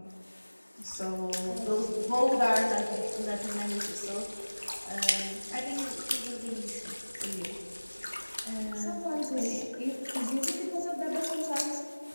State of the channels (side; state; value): both; inverted; correlation -1.00